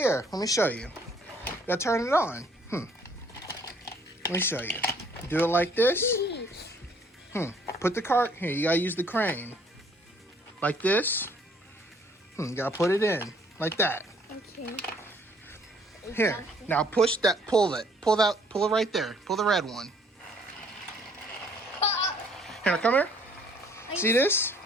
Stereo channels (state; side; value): normal; both; correlation 0.61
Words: let me show you. Gotta turn it on. Let me show you. Do it like this. Put the cart here. You gotta use the crane. Like this. You gotta put it in. Like that. Okay. Here. Now push that. Pull it. Pull that. Pull it right there. Pull the red one. Here, come here. See this?